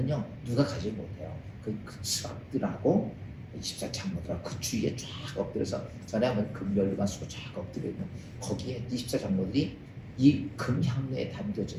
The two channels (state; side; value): identical; both; correlation 1.00